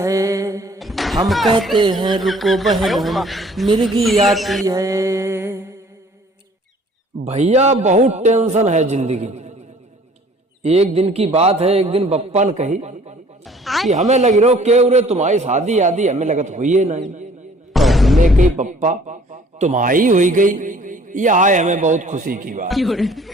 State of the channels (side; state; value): both; normal; correlation 0.54